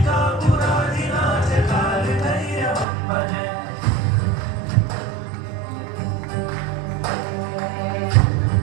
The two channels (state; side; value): drops out; left; at 2.9 s